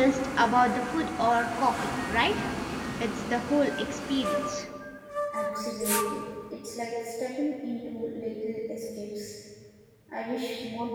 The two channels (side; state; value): both; identical; correlation 1.00